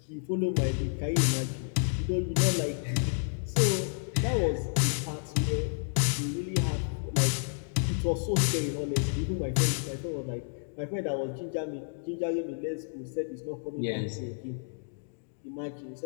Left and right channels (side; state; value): right; silent; digital silence